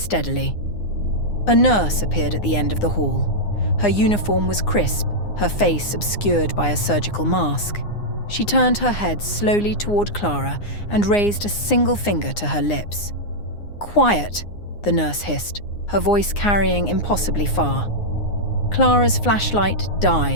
A nurse appeared at the end of the hall. Her uniform was crisp, her face obscured by a surgical mask. She turned her head slowly toward Clara and raised a single finger to her lips. "Quiet," the nurse hissed, her voice carrying impossibly far. Clara's flashlight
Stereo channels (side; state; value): right; late; 9.7 ms